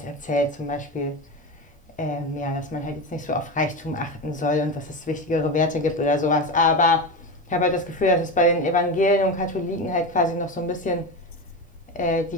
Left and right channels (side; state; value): both; normal; correlation 0.20